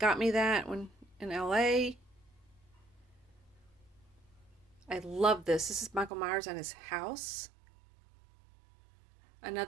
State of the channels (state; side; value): drops out; left; at 6.1 s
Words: me that when in LA. I love this. This is Michael Myers and his house.